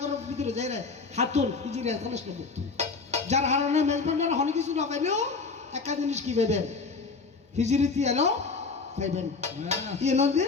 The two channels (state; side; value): quieter; right; 4.4 dB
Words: ভিতরে যাই রে হাতুন হিজড়ি আসলে যার কারণে মেজবান্ডার অনেক কিছু না পাইলেও একটা জিনিস কি পাইবেন হিজড়িতে এলো পাইবেন ইয়ে নদী